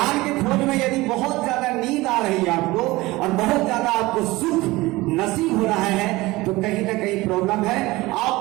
के खोज में यदि बहुत ज्यादा नींद आ रही है आपको और बहुत ज्यादा आपको सुख नसीब हो रहा है तो कहीं ना कहीं प्रॉब्लम है।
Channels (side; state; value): left; quieter; 20.3 dB